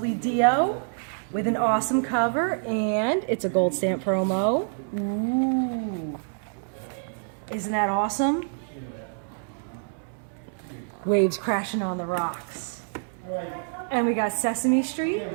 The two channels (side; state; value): left; silent; digital silence